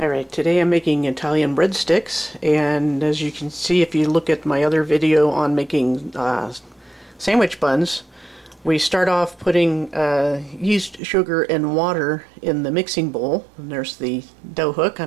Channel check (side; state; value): left; drops out; at 11.0 s